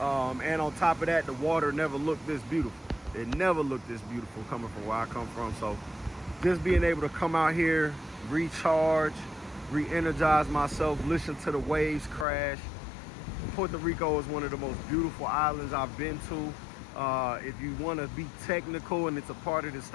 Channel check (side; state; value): right; drops out; at 12.2 s